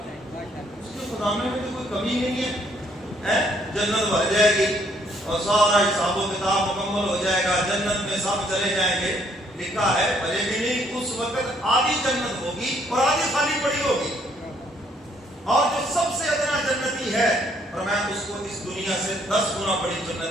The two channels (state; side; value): normal; both; correlation 0.67